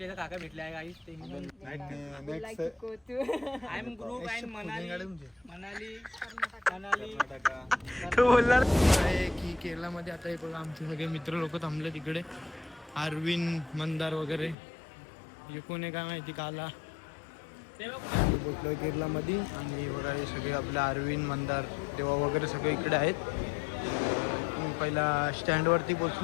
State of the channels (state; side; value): drops out; right; at 14.6 s